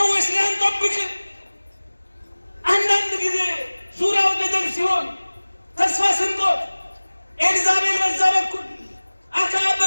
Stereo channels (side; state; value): both; inverted; correlation -1.00